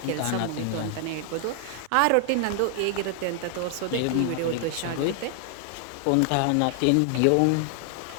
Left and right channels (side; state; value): both; different; correlation 0.00